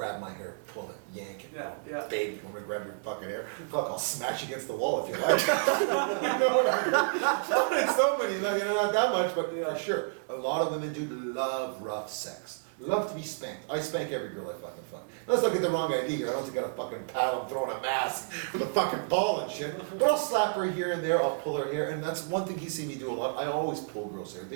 my hair, pull it, yank it. Yeah. Baby, you want me to grab your fucking hair? Fuck, I'll smash you against the wall if you like. You know what I mean? Not in so many, not that much, but Yeah. for sure. A lot of women do love rough sex. Love to be spanked. I spank every girl I fucking fuck. Let's not get the wrong idea here. I don't think I got a fucking paddle, I'm throwing a mask with a fucking ball and shit. But I'll slap her here and there, I'll pull her hair, and that's one thing he's seen me do a lot. I always pull girls' hair.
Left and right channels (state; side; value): silent; left; digital silence